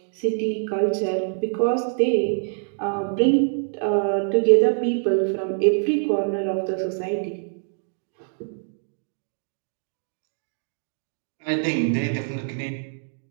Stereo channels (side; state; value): left; silent; digital silence